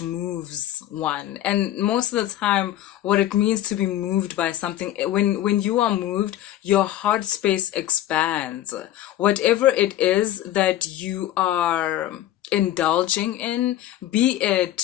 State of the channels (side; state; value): right; quieter; 13.0 dB